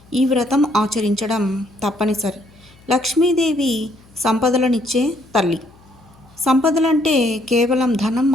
ఈ వ్రతం ఆచరించడం తప్పనిసరి. లక్ష్మీదేవి సంపదలనిచ్చే తల్లి. సంపదలంటే కేవలం ధనం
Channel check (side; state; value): left; noise; hum, 28 dB below the sound